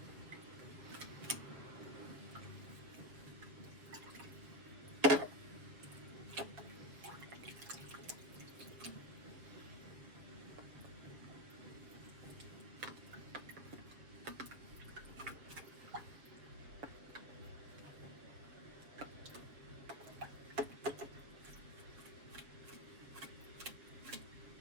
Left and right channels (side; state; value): left; late; 7.0 ms